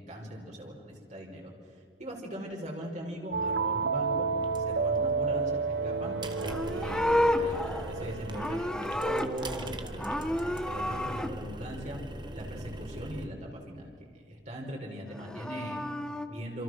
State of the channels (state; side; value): normal; both; correlation 0.36